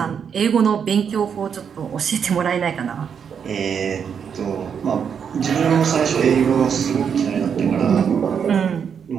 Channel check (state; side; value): quieter; left; 7.2 dB